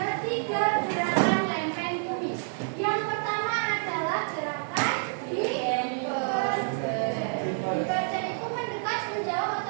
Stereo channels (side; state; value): left; silent; digital silence